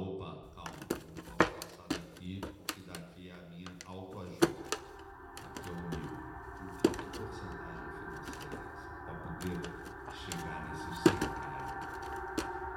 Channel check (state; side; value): identical; both; correlation 1.00